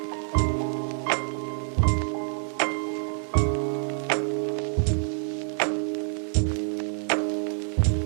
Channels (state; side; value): silent; left; 60 dB below the other